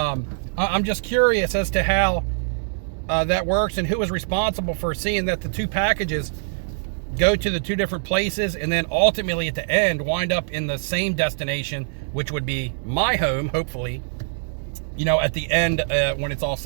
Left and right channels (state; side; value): silent; left; digital silence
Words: just curious as to how that works and who is responsible for seeing that the 2 packages go to the 2 different places and then ultimately at the end wind up in the same destination, which would be my home, hopefully, you know, at the end when it's all